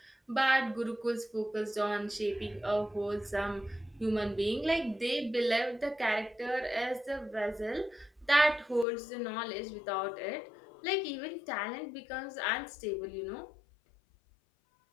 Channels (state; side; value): drops out; right; at 8.8 s